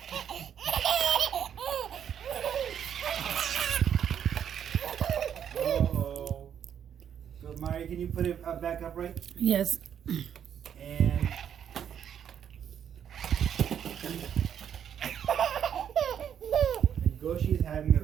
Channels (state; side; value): quieter; left; 8.8 dB